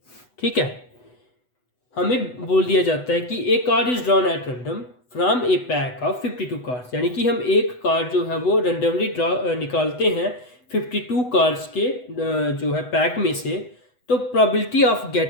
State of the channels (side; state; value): right; late; 8.0 ms